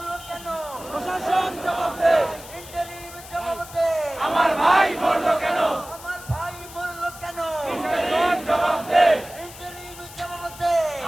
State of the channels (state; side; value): noise; left; hiss, 16 dB below the sound